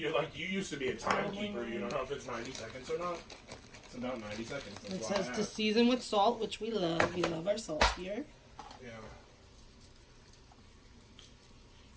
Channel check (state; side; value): identical; both; correlation 1.00